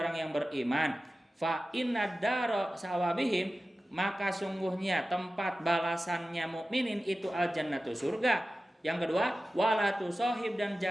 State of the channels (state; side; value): normal; both; correlation 0.95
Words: yang beriman. Fa inna daro sawabihim maka sungguhnya tempat balasannya mukminin itu al jannatu surga. Yang kedua wala tusahib dan